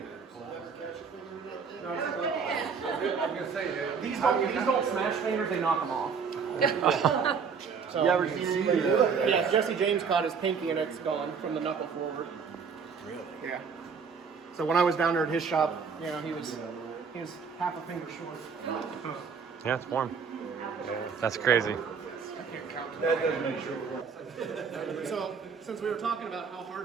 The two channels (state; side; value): quieter; left; 5.9 dB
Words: I'm gonna say that. These don't smash fingers, they knock them off. So, You ever see that? yeah, Jesse James caught his pinky and it's gone from the knuckle forward. Really? Yeah. So when I was down there at his shop, you know, he was half a finger short. Yeah, it's warm. That's crazy. That does make sure it works. So since we were talking about how